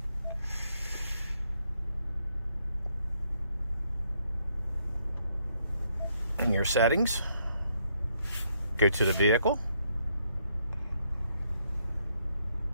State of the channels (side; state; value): both; inverted; correlation -0.74